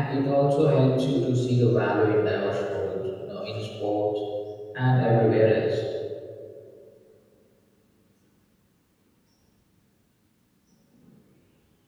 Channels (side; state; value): both; identical; correlation 1.00